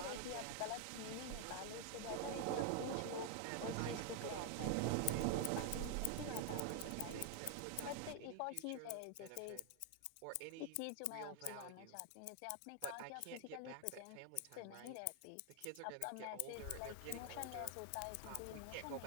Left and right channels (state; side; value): different; both; correlation 0.00